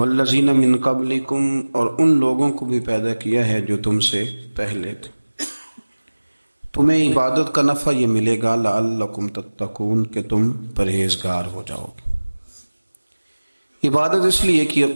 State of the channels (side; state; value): both; inverted; correlation -1.00